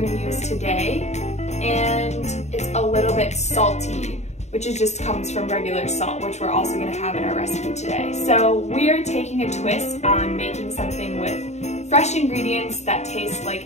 use today. And it's a little bit salty, which just comes from regular salt, which we're also gonna have in our recipe today. So we're taking a twist on making something with fresh ingredients that taste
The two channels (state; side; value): late; right; 0.32 ms